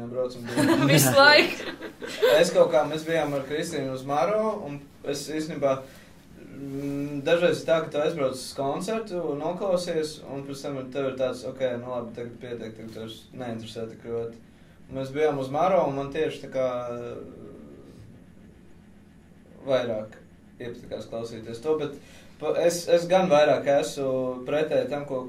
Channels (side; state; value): both; identical; correlation 1.00